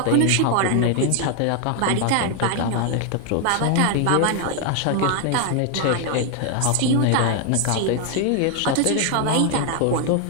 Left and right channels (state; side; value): different; both; correlation 0.00